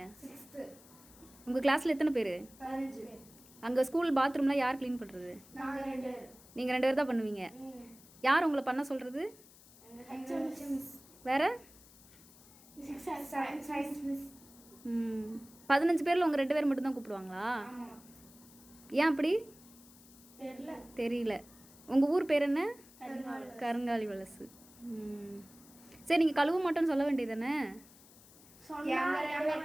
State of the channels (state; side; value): noise; left; hiss, 23 dB below the sound